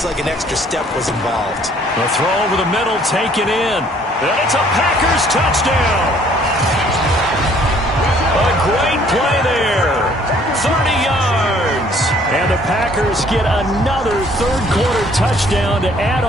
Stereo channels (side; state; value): both; normal; correlation 0.60